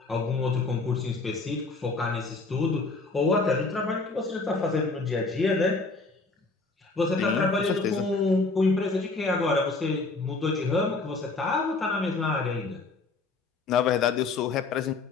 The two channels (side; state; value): right; quieter; 3.7 dB